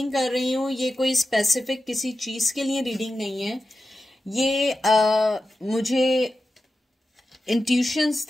कर रही हूँ। ये कोई स्पेसिफिक किसी चीज के लिए रीडिंग नहीं है। ये मुझे इंट्यूशंस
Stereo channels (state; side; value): normal; both; correlation 0.92